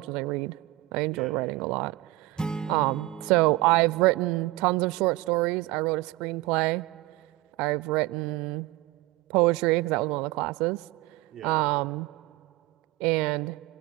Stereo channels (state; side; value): quieter; left; 19.0 dB